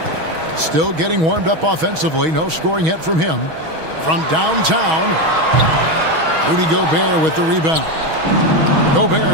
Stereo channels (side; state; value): left; late; 6.3 ms